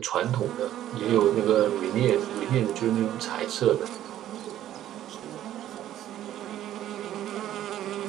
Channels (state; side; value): quieter; left; 12.3 dB